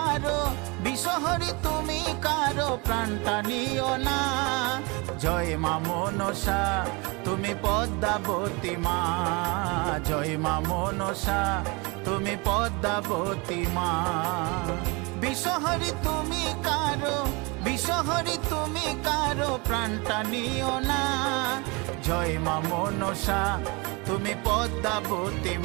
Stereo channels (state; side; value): quieter; left; 27.9 dB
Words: বিষহরি তুমি কারো প্রাণটা নিও না। জয় মা মনসা তুমি পদ্মাবতী মা, জয় মা মনসা তুমি পদ্মাবতী মা। বিষহরি তুমি কারো, বিষহরি তুমি কারো প্রাণটা নিও না। জয় মা মনসা তুমি পদ্মাবতী